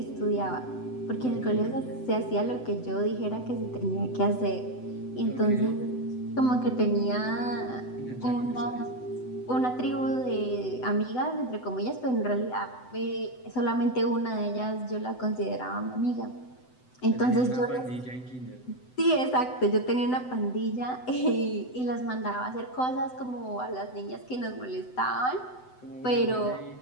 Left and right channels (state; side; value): late; right; 7.9 ms